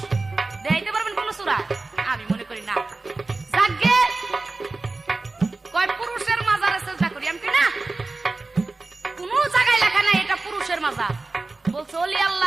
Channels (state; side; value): quieter; left; 3.5 dB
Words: দেখাইতে পারবেন কোন সূরা? আমি মনে করি না। যাকে কয় পুরুষের মাজারে চেষ্টা করি, আমি কি না, কোন জায়গায় লেখা নাই এটা পুরুষের মাজার, বলছে ওলি